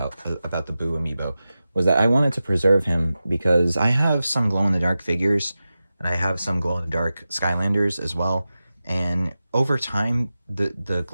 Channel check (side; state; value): both; inverted; correlation -0.94